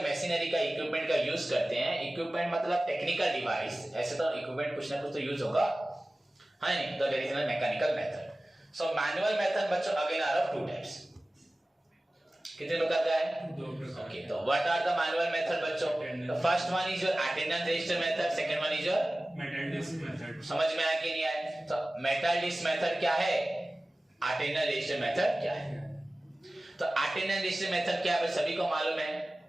मशीनरी का इक्विपमेंट का यूज करते हैं, इक्विपमेंट मतलब टेक्निकल डिवाइस, ऐसे तो इक्विपमेंट कुछ ना कुछ तो यूज होगा, है नहीं, तो that is mechanical method. So manual method बच्चों again are of two types. कितने प्रकार का है? ओके, तो what are the manual method बच्चों? The first one is your attendance register method, second one is your metal disc method. समझ में आया कि नहीं आया? तो मेटल डिस्क मेथड क्या है, अटेंडेंस रजिस्टर मेथड क्या है? तो अटेंडेंस रजिस्टर मेथड क्या है सभी को मालूम है।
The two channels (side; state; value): both; normal; correlation 0.97